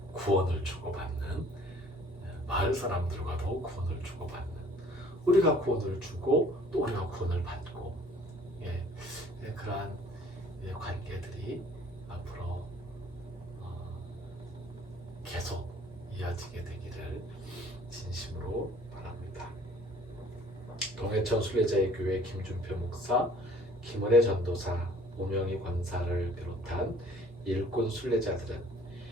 구원을 주고받는 마을 사람들과도 구원을 주고받는 우리가 구원을 주고 또 우리가 구원을 받고 그러한 관계들이 앞으로 계속 이어지게 되기를 진심으로 바랍니다. 동해천 순례자의 교회 김준표 목사, 김은혜 전도사, 오명희 권사를 비롯한 일꾼 순례자들은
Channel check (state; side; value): normal; both; correlation 0.54